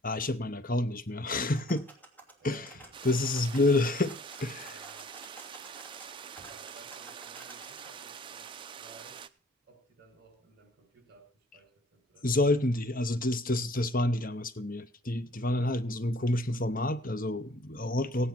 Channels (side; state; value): both; normal; correlation 0.58